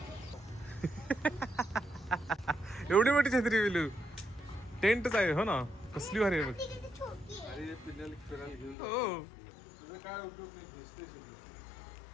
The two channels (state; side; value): drops out; right; at 8.8 s